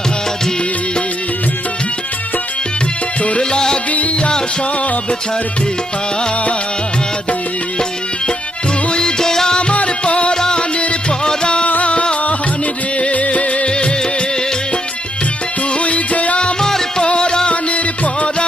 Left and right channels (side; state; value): both; normal; correlation 0.77